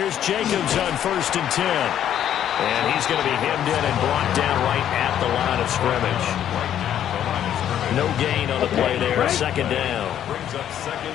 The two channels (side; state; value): right; quieter; 10.4 dB